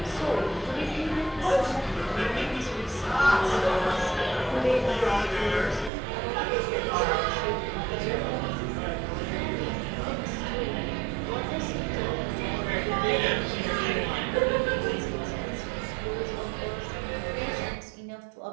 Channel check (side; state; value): left; drops out; at 5.9 s